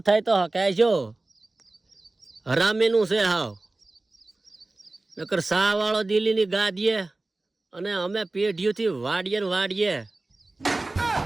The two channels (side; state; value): left; quieter; 3.0 dB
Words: થાય તો હકાય જો હરામીનું છે હાવ. નકર સા વાળો દિલ્હીની ગાદીએ અને અમે પેઢીઓથી વાડીએ ને વાડીએ.